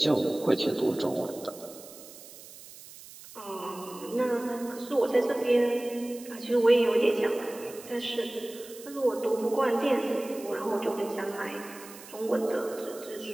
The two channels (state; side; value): noise; right; hiss, 17 dB below the sound